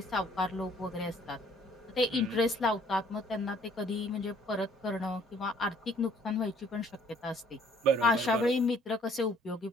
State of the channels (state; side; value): normal; both; correlation 0.60